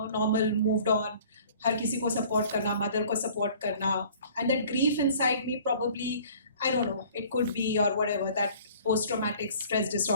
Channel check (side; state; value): both; inverted; correlation -0.51